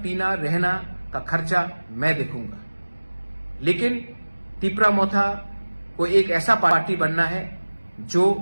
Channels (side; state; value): both; inverted; correlation -1.00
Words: पीना रहना का खर्चा मैं देखूंगा। लेकिन त्रिपुरा मोथा को एक ऐसा पार्टी बनना है जो